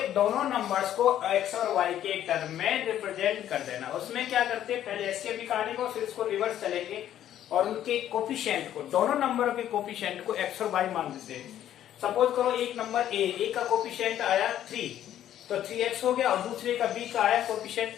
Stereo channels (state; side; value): quieter; right; 11.4 dB